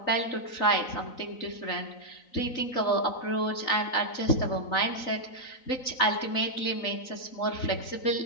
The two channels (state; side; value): late; right; 3.9 ms